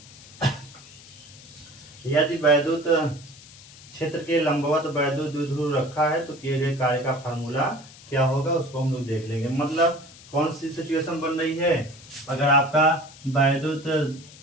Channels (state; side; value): noise; left; hiss, 20 dB below the sound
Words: यदि वैद्युत क्षेत्र के लंबवत वैद्युत द्विध्रुव रखा है, तो किए गए कार्य का फार्मूला क्या होगा, उसको हम लोग देख लेंगे। मतलब कौन सी सिचुएशन बन रही है? अगर आपका वैद्युत